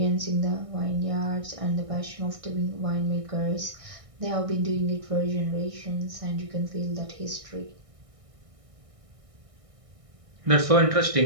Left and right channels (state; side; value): late; left; 1.6 ms